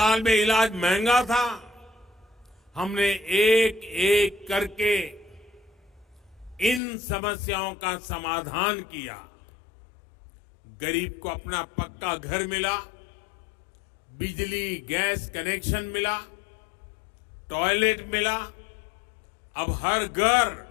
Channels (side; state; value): right; drops out; at 6.8 s